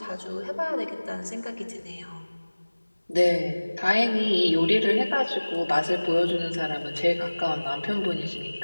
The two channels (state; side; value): inverted; both; correlation -1.00